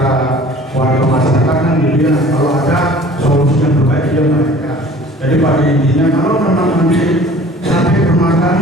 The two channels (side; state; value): both; normal; correlation 0.48